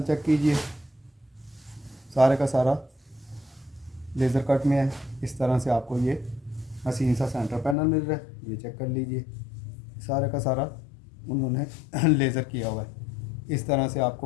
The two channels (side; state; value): right; drops out; at 7.8 s